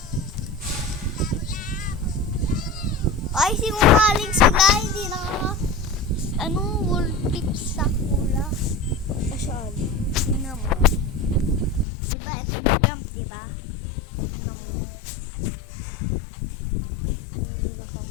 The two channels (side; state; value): right; drops out; at 11.9 s